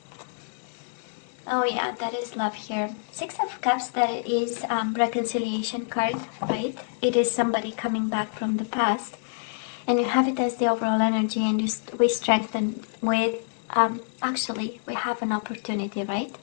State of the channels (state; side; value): silent; right; digital silence